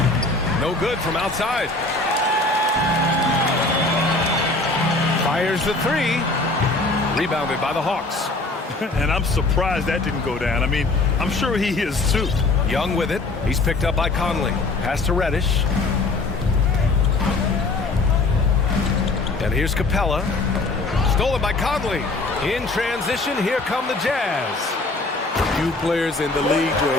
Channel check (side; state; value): right; quieter; 3.2 dB